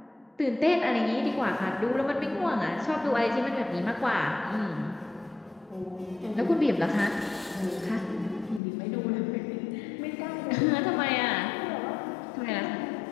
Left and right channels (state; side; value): drops out; right; at 8.6 s